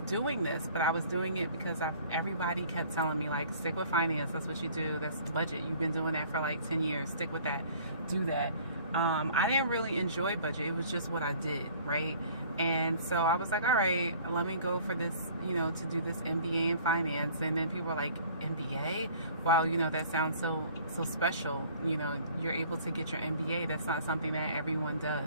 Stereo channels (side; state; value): both; inverted; correlation -0.52